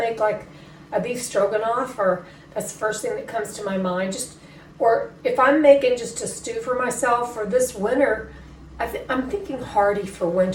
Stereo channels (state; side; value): identical; both; correlation 1.00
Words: like a beef stroganoff, or that's the first thing that comes to my mind. Or if I'm making just a stew for myself for this winter, I'm thinking hearty for